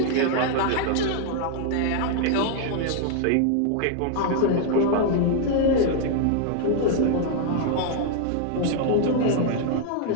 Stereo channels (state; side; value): different; both; correlation 0.00